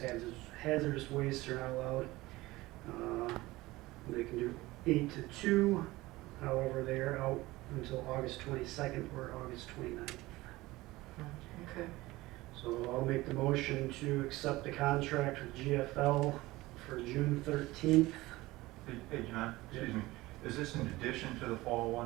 hazardous wastes are not allowed. They can do 8 to 2, however they are out until August 22nd or August 29th. Okay. So I'll make the motion to accept the contract with GFL for June 13th. Hey, John, excuse me, is this in addition to the fall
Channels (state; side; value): quieter; left; 19.2 dB